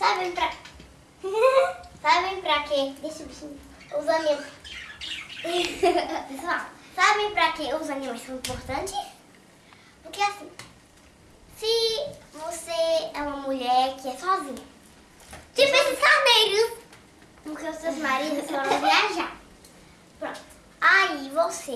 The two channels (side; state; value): both; identical; correlation 1.00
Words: pra quê? Deixa o bichinho. Os animais. Pessoal, sabem pra que os animais são importantes? Porque assim, se você é uma mulher que é sozinha, tipo esses carneiros, porque os seus maridos foram viajar. Pronto. Aí